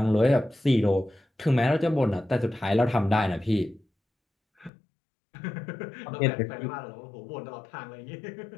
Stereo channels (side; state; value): right; drops out; at 4.7 s